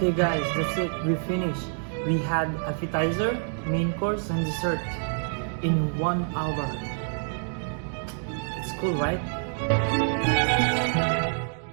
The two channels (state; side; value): silent; left; digital silence